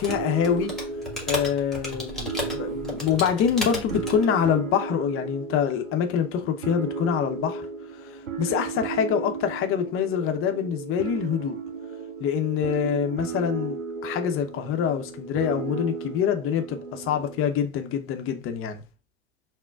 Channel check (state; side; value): quieter; right; 5.7 dB